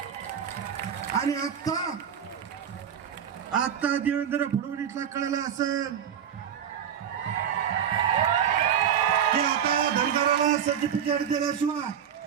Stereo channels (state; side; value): quieter; left; 8.6 dB